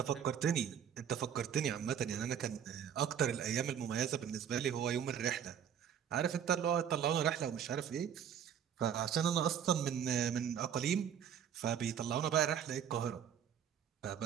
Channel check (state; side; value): quieter; left; 8.6 dB